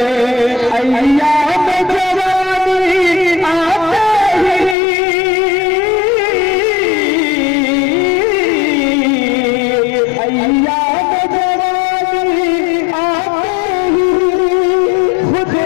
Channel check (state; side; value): drops out; right; at 4.8 s